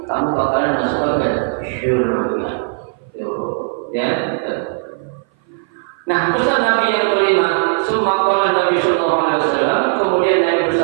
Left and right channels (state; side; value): silent; left; 58 dB below the other